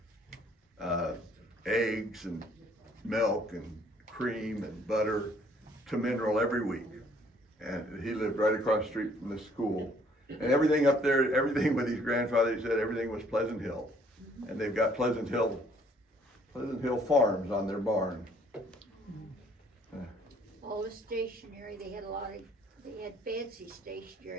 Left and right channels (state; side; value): normal; both; correlation 0.62